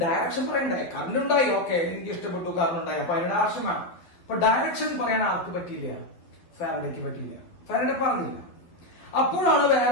ഡയറക്ഷൻ പറയണ്ടേ? കറണ്ട് ഉണ്ടായി, ഓക്കെ, എനിക്ക് ഇഷ്ടപ്പെട്ടു, കറണ്ട് ഉണ്ടായി, അപ്പൊ അതിന് ഡയറക്ഷൻ വേണം. അപ്പൊ ഡയറക്ഷൻ പറയാൻ ആർക്ക് പറ്റിയില്ല? ഫാരഡേക്ക് പറ്റിയില്ല. ഫാരഡേ പറഞ്ഞില്ല. അപ്പോഴാണ് വേറെ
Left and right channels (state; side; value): late; right; 11 ms